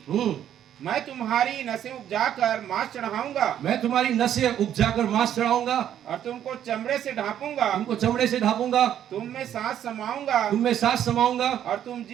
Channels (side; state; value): left; quieter; 10.4 dB